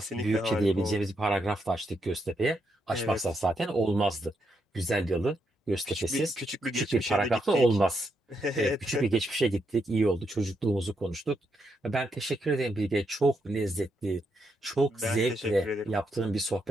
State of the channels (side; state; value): both; normal; correlation 0.80